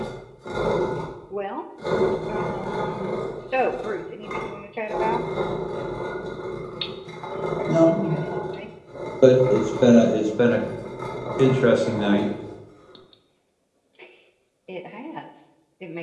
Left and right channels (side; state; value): both; identical; correlation 1.00